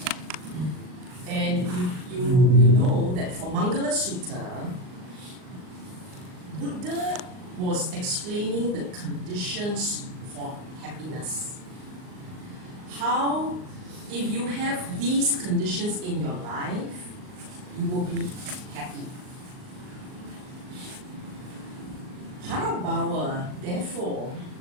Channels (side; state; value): left; late; 39 ms